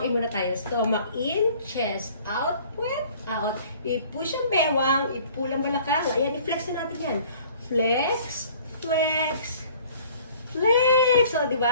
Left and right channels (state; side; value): inverted; both; correlation -0.53